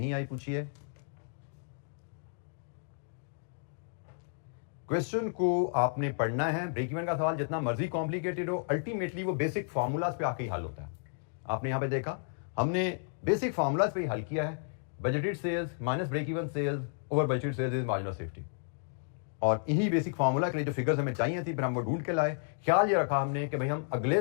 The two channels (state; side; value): silent; right; digital silence